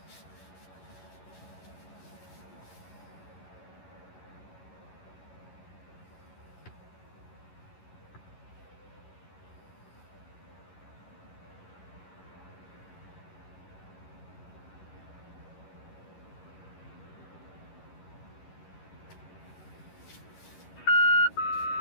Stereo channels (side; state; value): right; late; 11 ms